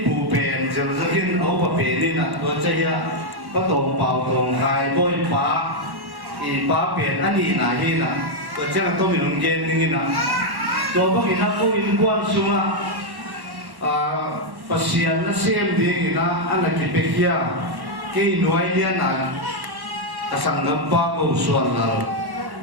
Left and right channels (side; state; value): left; late; 1.1 ms